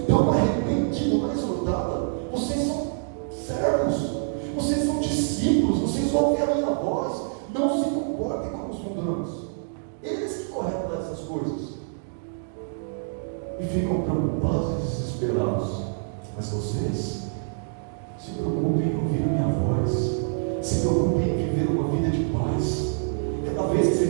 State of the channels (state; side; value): silent; left; digital silence